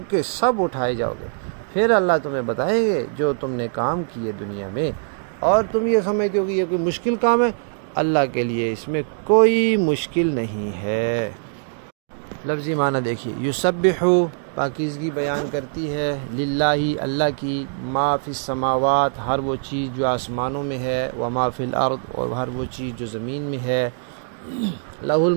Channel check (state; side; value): silent; left; digital silence